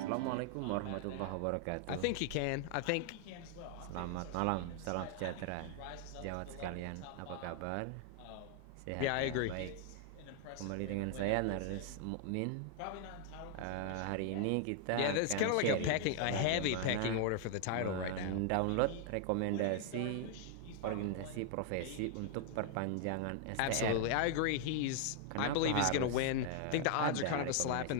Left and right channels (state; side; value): different; both; correlation 0.00